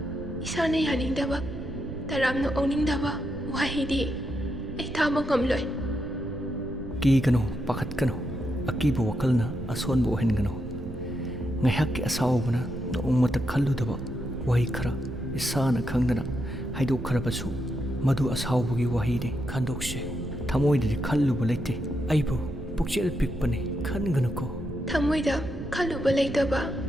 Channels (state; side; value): noise; right; rumble, 10 dB below the sound